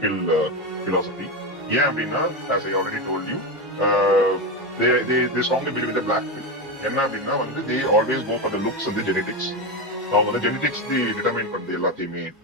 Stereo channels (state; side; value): normal; both; correlation 0.14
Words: bill philosophy. ஏன் அப்படின்னா as I already told you, they strongly believe in the black pill. என்ன அப்படின்னா வந்து they always go for the looks and the genetics. அவங்க வந்து genetics டிட்டர்மைன் பண்றது எல்லாத்தையுமே.